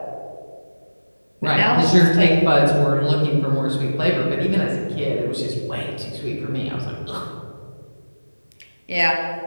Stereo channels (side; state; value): both; inverted; correlation -1.00